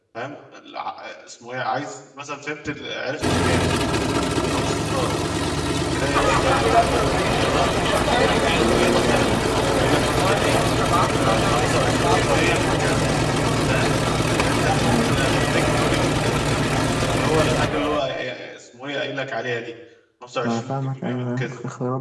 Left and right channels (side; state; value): both; identical; correlation 1.00